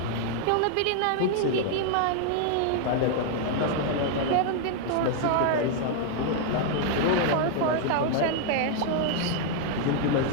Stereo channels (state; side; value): different; both; correlation 0.00